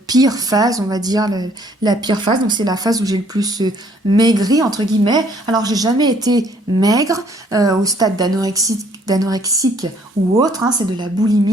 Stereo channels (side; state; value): both; normal; correlation 0.62